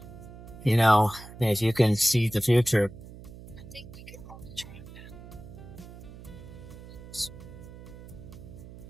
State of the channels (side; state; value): right; noise; hum, 16 dB below the sound